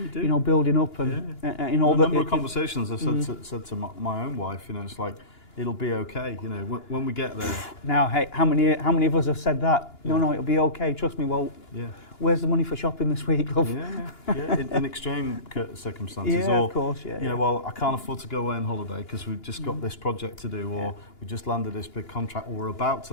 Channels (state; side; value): late; right; 2.9 ms